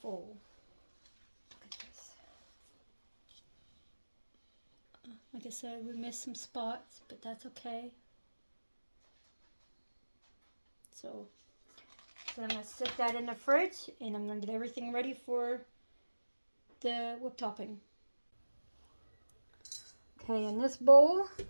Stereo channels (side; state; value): both; inverted; correlation -1.00